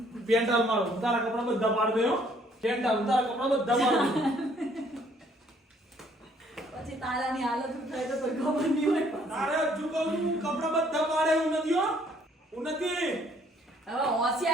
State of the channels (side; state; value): both; normal; correlation 0.63